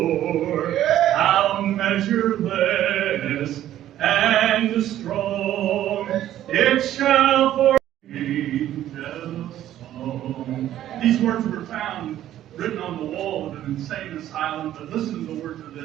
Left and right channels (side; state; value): left; quieter; 12.4 dB